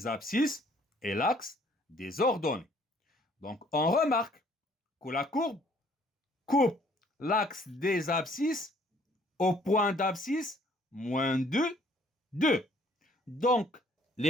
abscisses et l'axe des ordonnées. Donc, on remarque que la courbe coupe l'axe des abscisses au point d'abscisse moins 2, 2. Donc,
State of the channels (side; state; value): both; normal; correlation 0.60